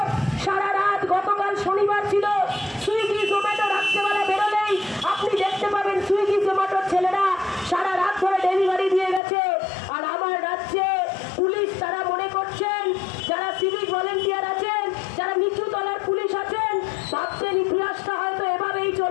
সারা রাত, গতকাল শনিবার ছিল, সুইগি জোম্যাটো রাত্রেবেলা বেরোলেই আপনি দেখতে পাবেন সুইগি জোম্যাটোর ছেলেরা সারা রাত ধরে ডেলিভারি দিয়ে গেছে। আর আমার রাজ্যে পুলিশ তারা মনে করছেন, যারা সিভিক ভলেন্টিয়ার আছেন, যারা নিচু তলার পুলিশ আছেন, ভাবছেন ইতিহাসটা হয়তো এভাবেই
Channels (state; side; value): drops out; right; at 9.2 s